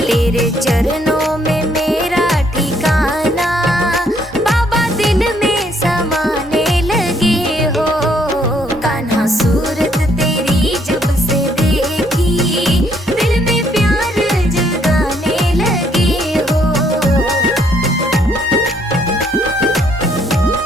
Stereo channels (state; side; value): normal; both; correlation 0.69